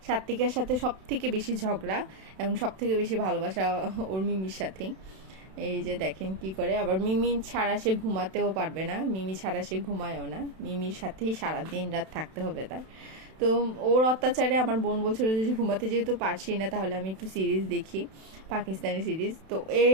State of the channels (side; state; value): left; late; 32 ms